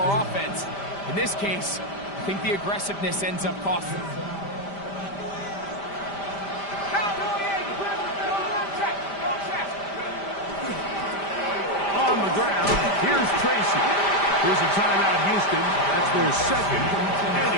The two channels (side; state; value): right; late; 5.0 ms